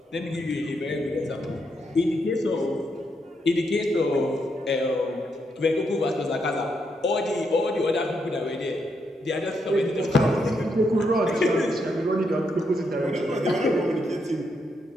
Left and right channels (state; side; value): normal; both; correlation 0.79